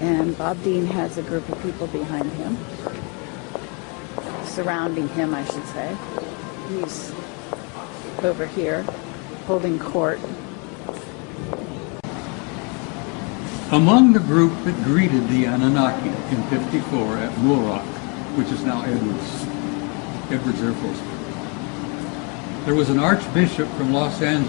And Bob Dean has a group of people behind him, surrounding him, I should say. He's over here holding court. Among the group that greeted the Anunnaki in '54 at Muroc, which is now Edwards Air Force Base, there was an archbishop from Los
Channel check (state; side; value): quieter; right; 33.8 dB